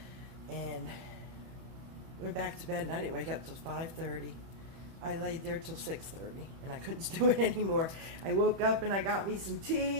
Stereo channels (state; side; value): late; left; 30 ms